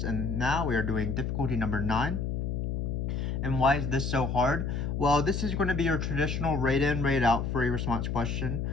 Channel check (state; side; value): noise; left; hum, 1 dB below the sound